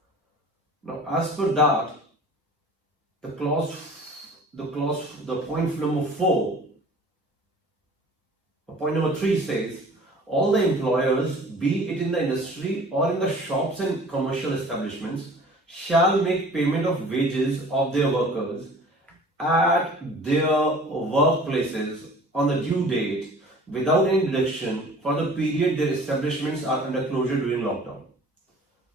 Now, as per that, the point number 4, point number 3 says, all the employers, be it in the industry or in the shops and commercial establishments, shall make payment of wages of their workers at their workplaces on the due date without any deduction for the period their establishments are under closure during lockdown.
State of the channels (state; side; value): normal; both; correlation 0.47